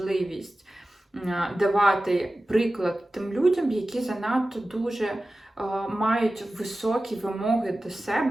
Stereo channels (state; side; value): normal; both; correlation 0.95